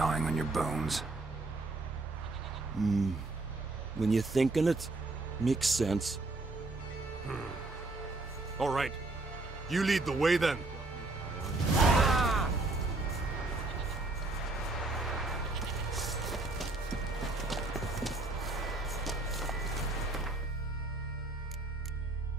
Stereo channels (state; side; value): quieter; left; 3.1 dB